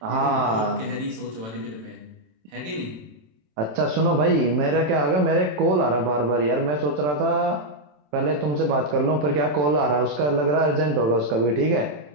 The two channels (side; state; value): left; late; 27 ms